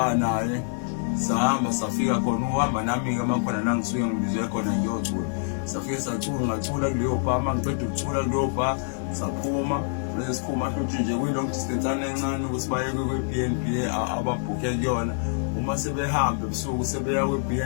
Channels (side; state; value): right; silent; digital silence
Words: naye, sahamba safika khona. Uhamba nami-ke makhona la ngisuke ngibizwe khona ngiyocula. Safike ngacula kuleyo bha. Uma ngiceda ukucula kuleyo bha saphuma, bese siphuma futhi nje kuyilong distance encane ukuthi baye kwi-B&B ababhukhe kuyona. Uma sebehamba ebusuku sebeya